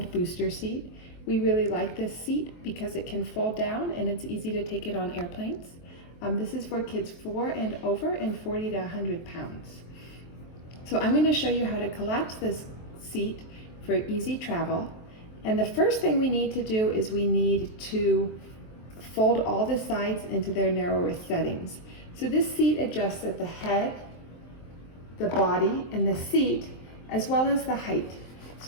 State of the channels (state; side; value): late; right; 23 ms